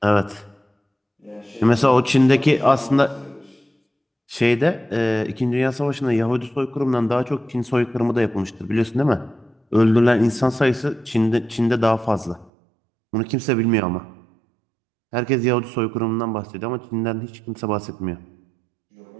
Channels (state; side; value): drops out; left; at 12.5 s